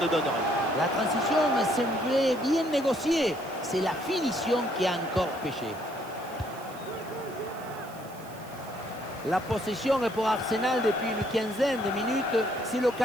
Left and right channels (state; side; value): noise; right; hiss, 21 dB below the sound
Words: donne rien. La transition semblait bien négociée. C'est la finition qui a encore péché. La possession est pour Arsenal depuis une quinzaine de minutes. C'est